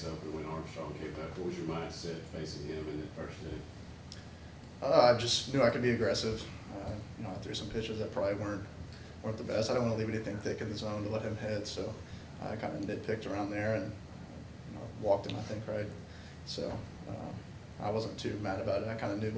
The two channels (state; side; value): identical; both; correlation 1.00